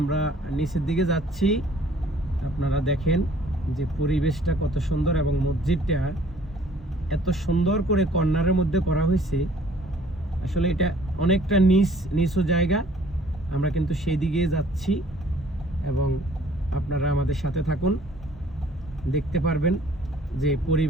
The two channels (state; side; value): normal; both; correlation 0.57